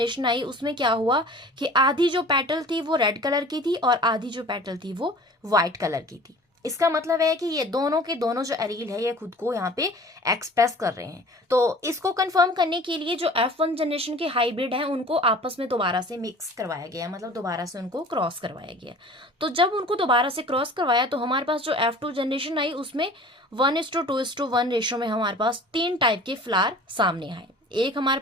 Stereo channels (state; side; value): normal; both; correlation 0.44